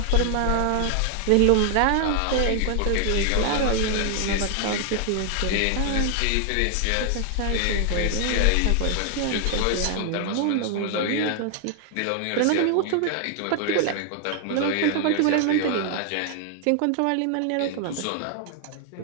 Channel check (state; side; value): different; both; correlation 0.00